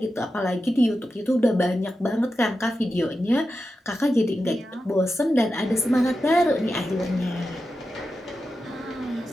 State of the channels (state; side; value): normal; both; correlation 0.91